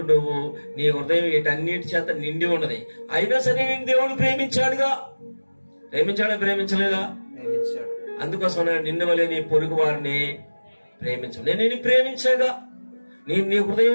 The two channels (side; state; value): both; inverted; correlation -1.00